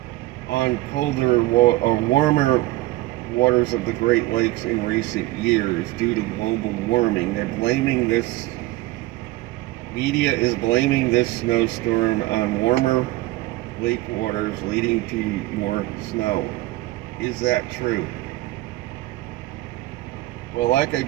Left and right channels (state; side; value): quieter; left; 18.2 dB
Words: on colder or warmer waters of the Great Lakes in recent years due to global warming. They're blaming this, media is blaming this snowstorm on warmer lake waters leading to more snow. Is that true? Well, like I